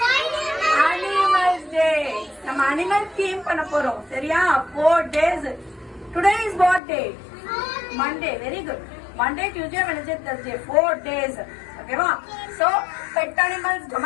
Animals Day. நம்ம animal theme பண்ண போறோம். சரியா? 4 days. Today is what day? Monday. Very good. Monday, Tuesday, Wednesday, Thursday. 4 days. Okay, va? So, pet animals,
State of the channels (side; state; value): right; drops out; at 6.8 s